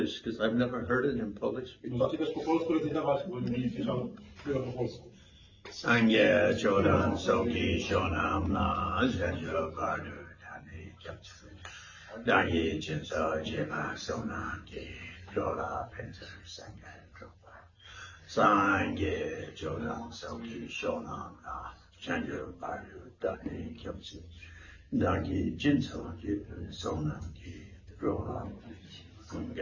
because I've never heard it in Polish before. Możecie też po polsku recytować, bo nie słyszał tego po polsku. Sangye Chodan Soki Shonam Na Zhenjo Bardu Tani Japsu Dangye Jinso Jima Sonam Ki Jola Penser Sangye Dropa Sangye Chodan Soki Shonam Na Zhenjo Bardu Tani Japsu Dangye Jinso Jima Sonam Ki Jola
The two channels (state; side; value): identical; both; correlation 1.00